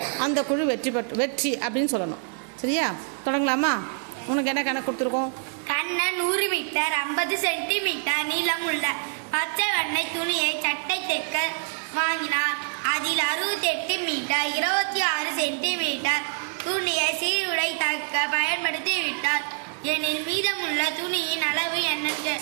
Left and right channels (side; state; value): left; silent; digital silence